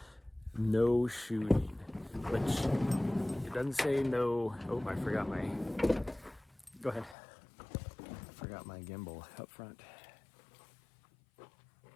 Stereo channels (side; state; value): right; drops out; at 7.2 s